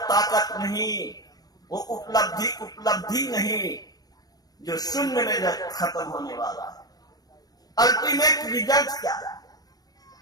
ताकत नहीं, वो उपलब्धि उपलब्धि नहीं, जो शून्य में खत्म होने वाला है। अल्टीमेट रिजल्ट क्या है?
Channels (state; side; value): late; right; 0.19 ms